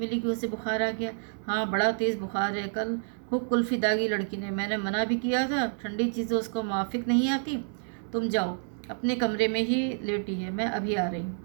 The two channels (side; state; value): left; silent; 59 dB below the other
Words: कि उसे बुखार आ गया। हाँ, बड़ा तेज़ बुखार है। कल खूब कुल्फ़ी दागी लड़की ने, मैंने मना भी किया था, ठंडी चीज़ें उसको माफिक नहीं आती। तुम जाओ, अपने कमरे में ही लेटी है, मैं अभी आ रही हूँ।